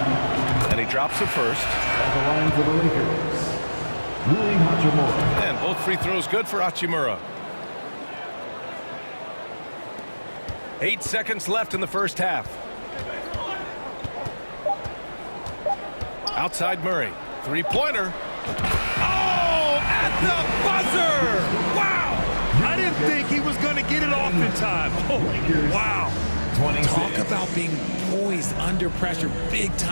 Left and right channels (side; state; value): both; inverted; correlation -1.00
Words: And he drops the first. At the line for the Lakers, Rui Hachimura. And both free throws good for Hachimura. 8 seconds left in the first half. Outside Murray. 3-pointer. Oh, at the buzzer! Wow! I didn't think he was going to get it off in time. Oh, wow. Talk about being poised under pressure. Big